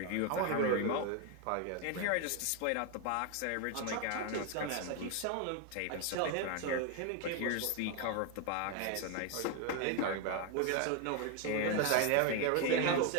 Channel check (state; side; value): different; both; correlation 0.01